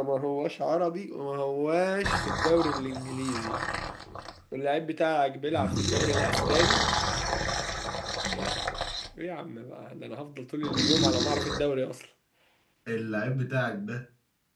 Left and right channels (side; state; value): both; identical; correlation 1.00